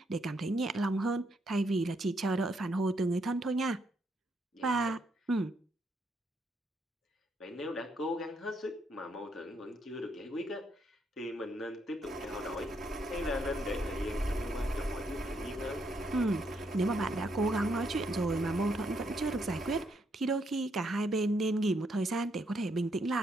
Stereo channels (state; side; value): normal; both; correlation 0.75